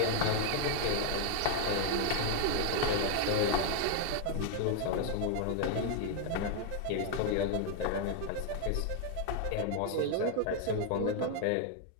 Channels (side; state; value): both; different; correlation 0.00